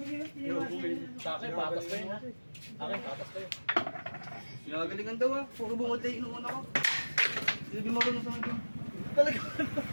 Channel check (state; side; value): inverted; both; correlation -1.00